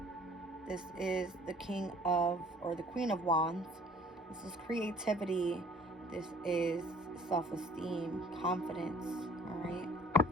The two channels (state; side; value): normal; both; correlation 0.53